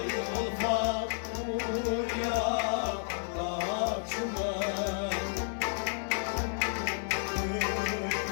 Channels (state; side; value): silent; right; 57 dB below the other